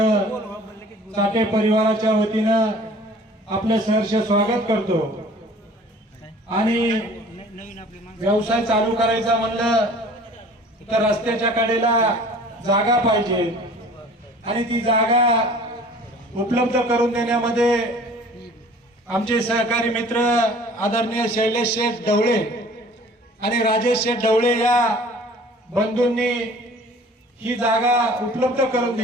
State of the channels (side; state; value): both; normal; correlation 0.48